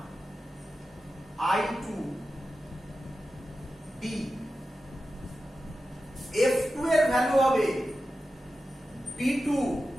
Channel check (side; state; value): both; normal; correlation 0.92